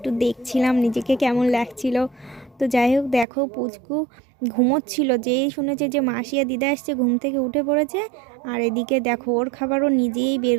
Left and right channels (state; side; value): drops out; left; at 3.2 s